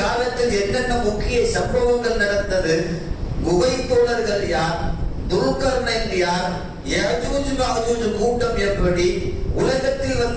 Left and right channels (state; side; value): identical; both; correlation 1.00